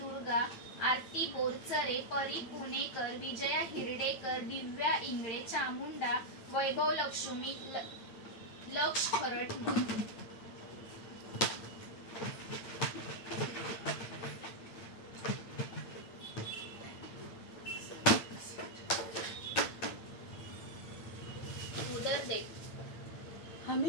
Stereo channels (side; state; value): right; late; 8.8 ms